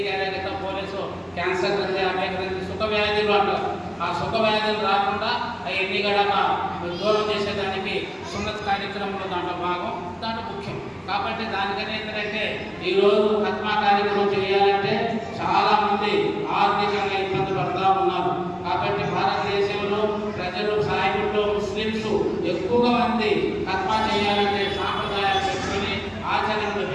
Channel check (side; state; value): both; identical; correlation 1.00